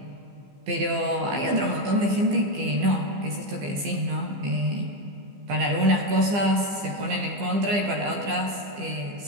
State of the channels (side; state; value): left; late; 15 ms